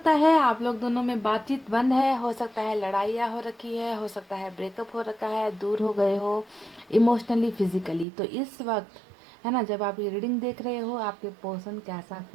है आप लोग दोनों में बातचीत बंद है, हो सकता है लड़ाइयाँ हो रखी है, हो सकता है ब्रेकअप हो रखा है, दूर हो गए हो इमोशनली फिजिकली। तो इस वक्त है ना, जब आप ये रीडिंग देख रहे हो आपके पर्सन कैसा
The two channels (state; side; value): drops out; left; at 8.1 s